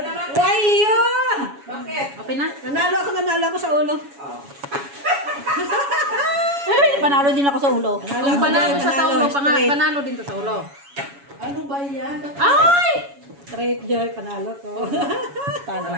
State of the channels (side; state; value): left; late; 7.1 ms